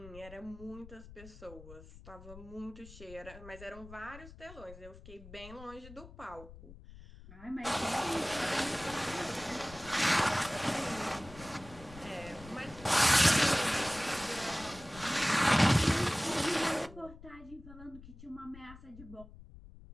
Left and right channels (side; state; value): left; noise; rumble, 18 dB below the sound